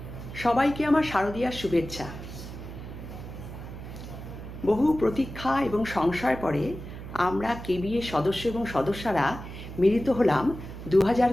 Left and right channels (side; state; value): right; noise; hum, 11 dB below the sound